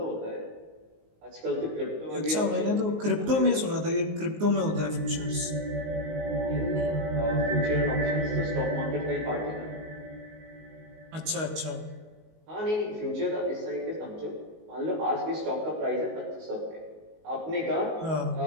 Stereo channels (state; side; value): late; left; 19 ms